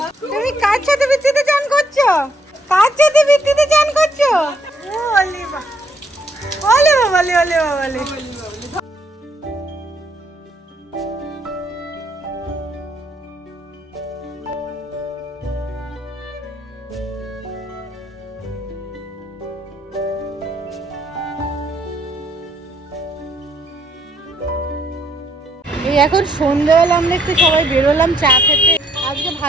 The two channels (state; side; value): normal; both; correlation 0.71